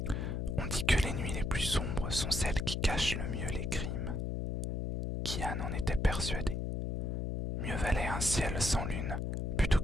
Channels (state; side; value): noise; left; hum, 1 dB below the sound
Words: On dit que les nuits les plus sombres sont celles qui cachent le mieux les crimes. Kian en était persuadé. Mieux valait un ciel sans lune plutôt